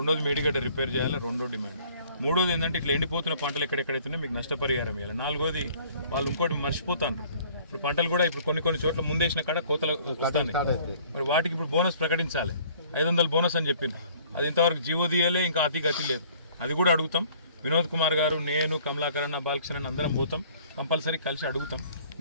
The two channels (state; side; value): inverted; both; correlation -0.55